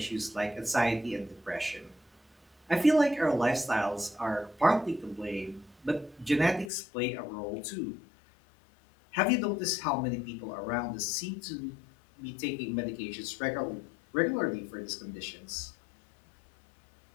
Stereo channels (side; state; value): right; drops out; at 6.7 s